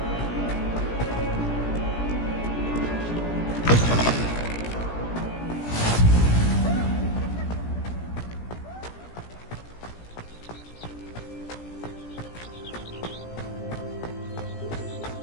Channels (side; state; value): right; late; 17 ms